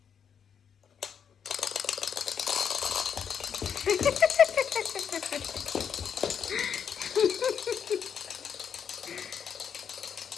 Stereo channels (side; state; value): right; quieter; 7.5 dB